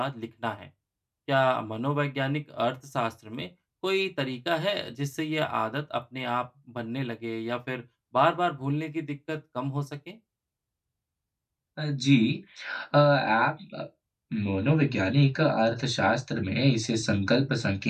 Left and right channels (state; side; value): identical; both; correlation 1.00